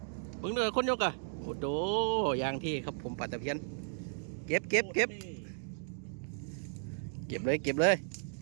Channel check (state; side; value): silent; left; digital silence